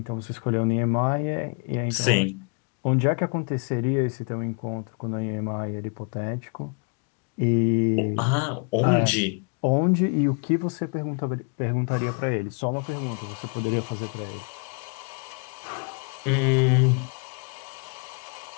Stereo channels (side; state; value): right; quieter; 36.6 dB